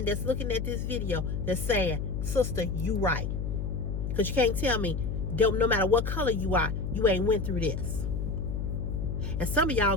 that's looking at this video that's saying, sister, you right. Because you can't tell me, no matter what color you are, you ain't went through this. And some of y'all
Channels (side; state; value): left; noise; hum, 2 dB below the sound